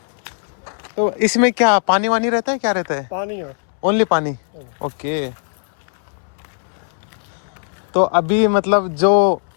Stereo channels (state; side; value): silent; right; 66 dB below the other